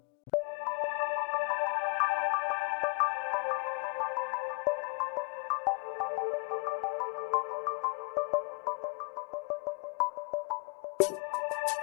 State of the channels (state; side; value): quieter; right; 33.5 dB